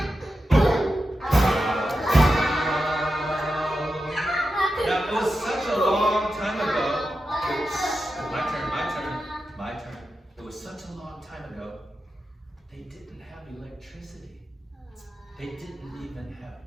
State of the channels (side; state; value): both; normal; correlation 0.90